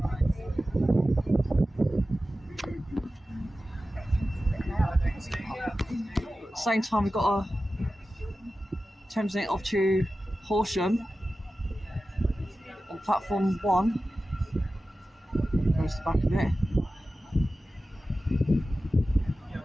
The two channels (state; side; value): normal; both; correlation 0.94